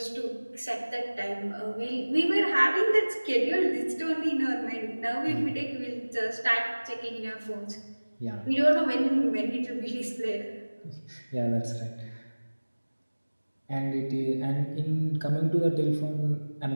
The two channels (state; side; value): inverted; both; correlation -1.00